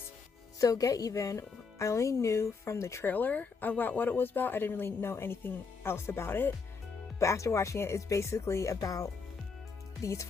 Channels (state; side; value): quieter; right; 4.9 dB